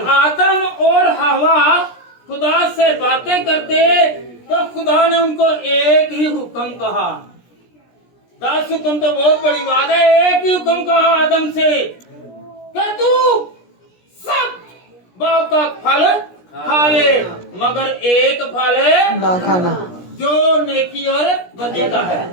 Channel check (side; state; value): right; late; 17 ms